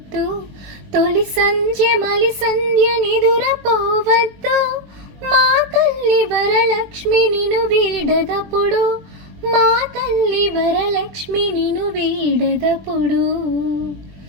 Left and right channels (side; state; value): left; late; 21 ms